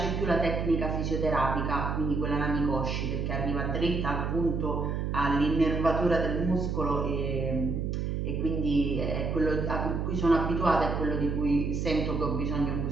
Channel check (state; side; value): noise; right; hum, 1 dB below the sound